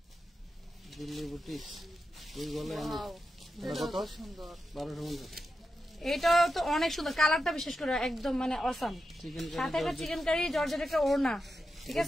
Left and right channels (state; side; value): normal; both; correlation 0.89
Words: এটা তো অনেক সুন্দর, কালারটা বিশেষ করে একদম মানে অসাম। সাথে একটা চিকেন কারি জর্জেট একটা ওড়না, ঠিক